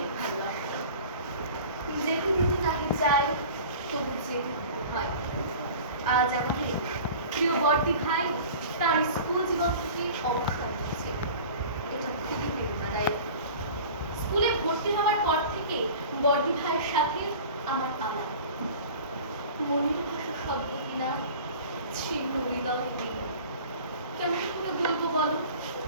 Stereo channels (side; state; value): both; inverted; correlation -0.40